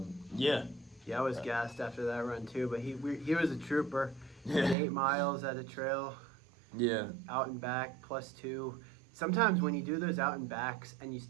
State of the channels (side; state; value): left; drops out; at 4.8 s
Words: yeah. Yeah, I was gassed after that run too, but he was a trooper. He did 8 miles at a trail, Yeah. out and back, +2. Sometimes when you do those out and backs and you